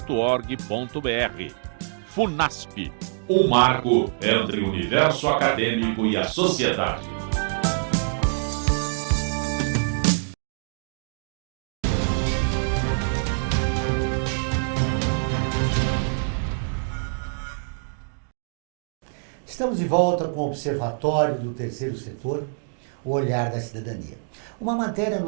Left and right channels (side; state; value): left; silent; digital silence